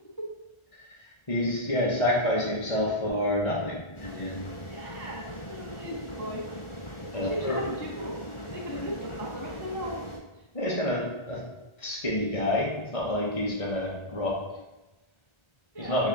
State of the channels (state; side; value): late; right; 1.4 ms